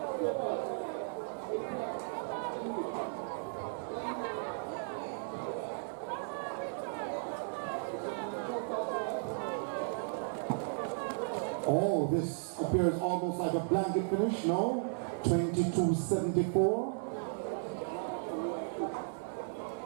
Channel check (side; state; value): left; silent; digital silence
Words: Oh, this appears almost like a blanket finish, no?